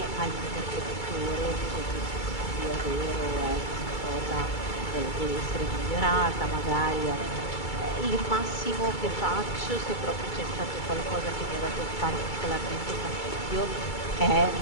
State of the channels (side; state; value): right; late; 2.3 ms